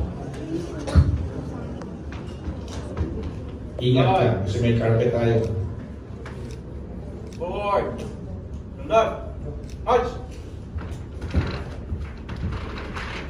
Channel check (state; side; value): identical; both; correlation 1.00